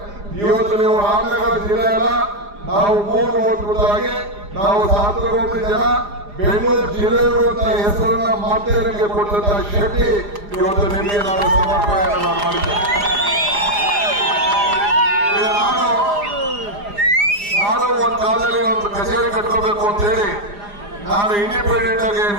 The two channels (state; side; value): late; left; 4.9 ms